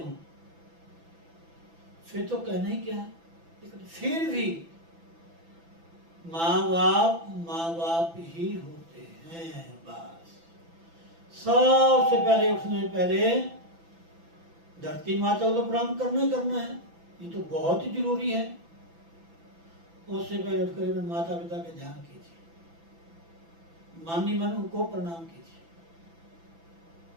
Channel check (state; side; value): late; left; 6.0 ms